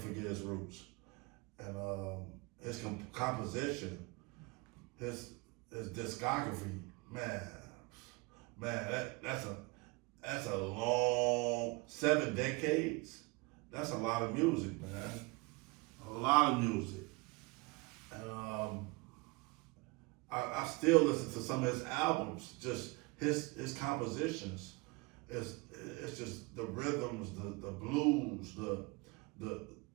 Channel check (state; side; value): quieter; left; 25.9 dB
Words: forget his roots. And his composition, his discography, man, that's a long 7 decades. That's a lot of music, man. A lot of music. And I still listen to some of his albums, just his compositions. It's just the rhythms, the blues,